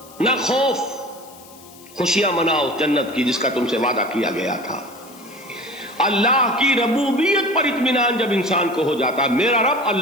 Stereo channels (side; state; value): left; noise; hiss, 22 dB below the sound